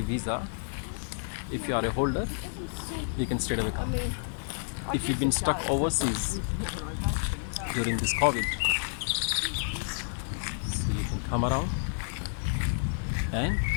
If you are a holder, you can straight away come. If you've been stuck overseas during this COVID, so you can come around and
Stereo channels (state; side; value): silent; right; digital silence